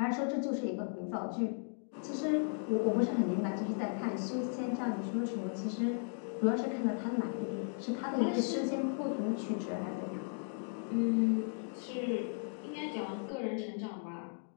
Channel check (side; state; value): right; silent; 54 dB below the other